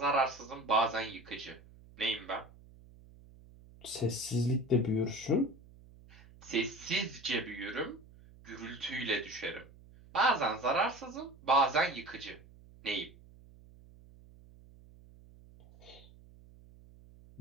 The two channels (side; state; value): right; noise; hum, 22 dB below the sound